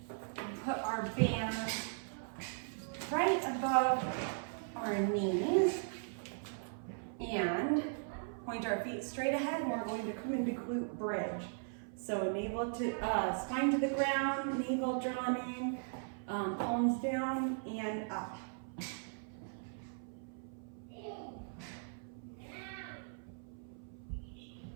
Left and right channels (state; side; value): silent; left; 52 dB below the other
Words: and put our band right above our knees and point our feet straight ahead, and we're going to come into glute bridge. So navel to spine to the ground, navel drawn in, palms down and up.